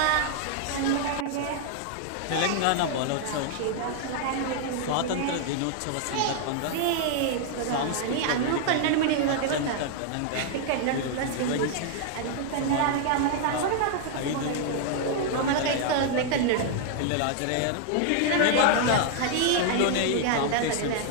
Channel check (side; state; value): both; different; correlation 0.00